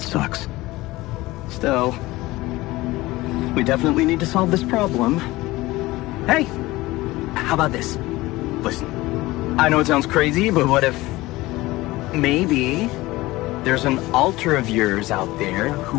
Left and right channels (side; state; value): right; quieter; 19.2 dB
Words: sucks. Still, we definitely need to solve this problem. Hey, how about this? Listen, I know it sounds crazy, but what if maybe there's an alter of yours out there who